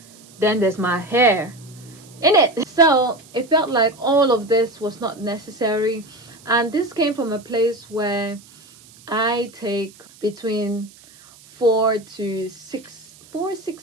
Then there's my hair in it. So it felt like all of this was not necessary. And this came from a place where I take between 4 to 6,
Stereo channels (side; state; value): right; noise; hiss, 24 dB below the sound